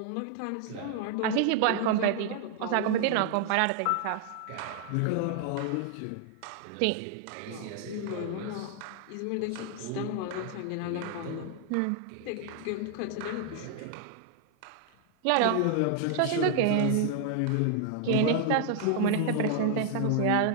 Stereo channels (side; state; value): both; different; correlation 0.00